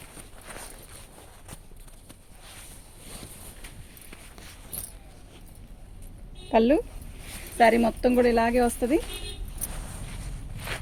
పళ్ళు. శారీ మొత్తం కూడా ఇలాగే వస్తుంది.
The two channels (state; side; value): identical; both; correlation 1.00